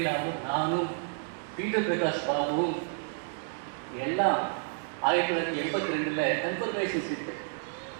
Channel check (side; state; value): left; silent; digital silence